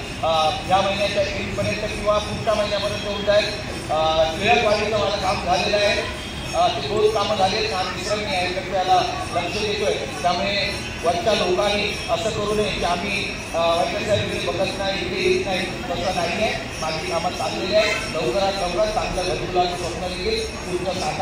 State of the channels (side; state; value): both; identical; correlation 1.00